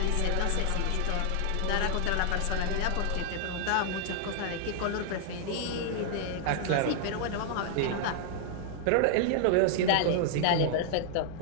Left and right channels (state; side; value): different; both; correlation 0.00